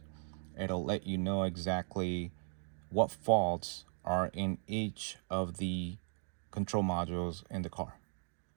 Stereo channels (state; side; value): silent; left; 53 dB below the other